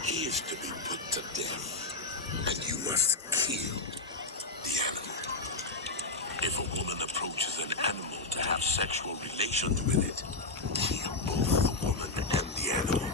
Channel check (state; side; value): quieter; right; 3.4 dB